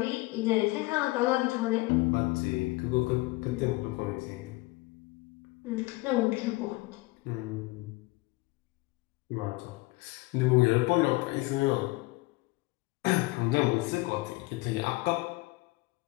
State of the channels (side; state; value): right; quieter; 21.8 dB